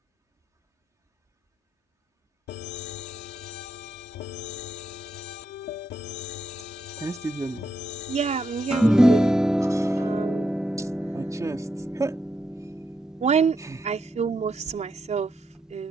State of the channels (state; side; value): normal; both; correlation 0.81